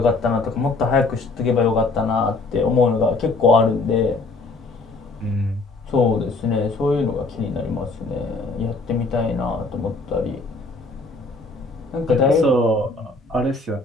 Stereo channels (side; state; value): right; quieter; 3.4 dB